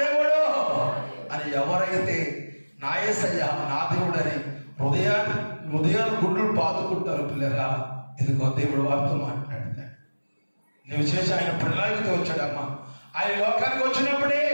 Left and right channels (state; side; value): inverted; both; correlation -1.00